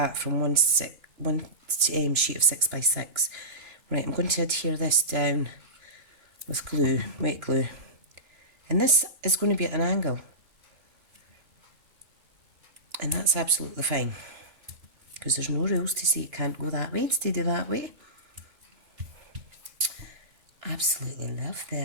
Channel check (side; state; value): left; late; 2.9 ms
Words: from one sheet of 6x6. Right, I'm going to adhere this down with glue, wet glue. And this is going to be at an angle. And that's absolutely fine, because there's no rules to say it can't go that way instead of that way. Absolutely love